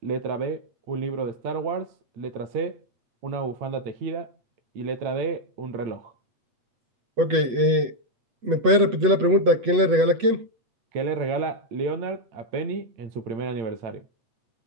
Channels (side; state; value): left; late; 8.2 ms